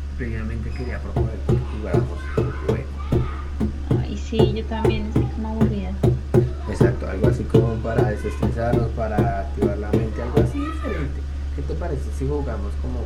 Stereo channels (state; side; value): identical; both; correlation 1.00